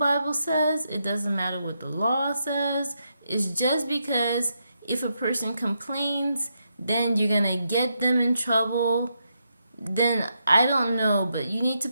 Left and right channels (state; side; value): inverted; both; correlation -0.81